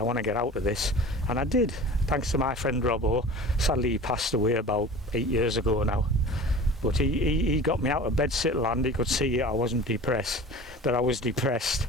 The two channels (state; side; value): normal; both; correlation 0.39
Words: want to get out of this. And I did, thanks to my friend Robbo. Sadly, he passed away about 8 years ago now. But he got me out of bedsit land. He could see I wasn't depressed, that I was depressed.